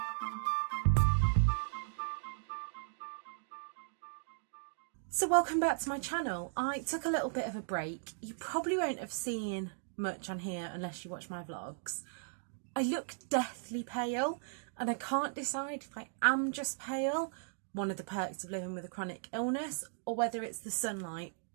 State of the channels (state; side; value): silent; left; digital silence